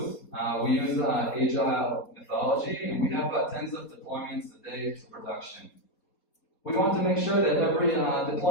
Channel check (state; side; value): late; right; 4.3 ms